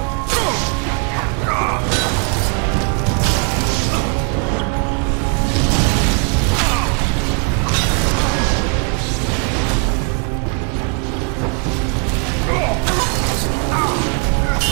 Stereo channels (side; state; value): left; quieter; 38.0 dB